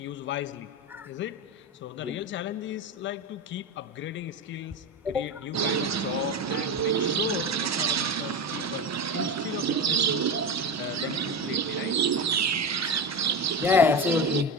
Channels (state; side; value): normal; both; correlation 0.21